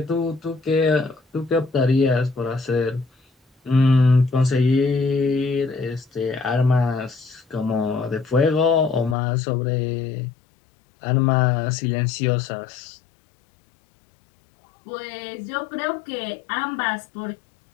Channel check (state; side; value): drops out; right; at 9.2 s